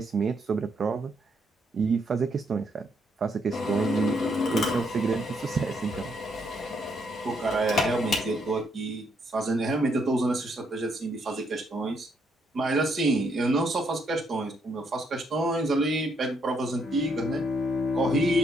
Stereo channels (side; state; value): both; normal; correlation 0.74